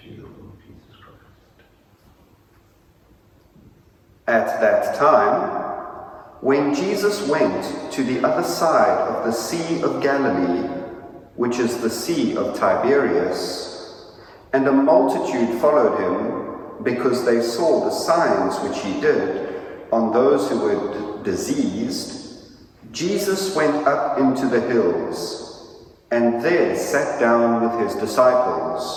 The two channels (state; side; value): identical; both; correlation 1.00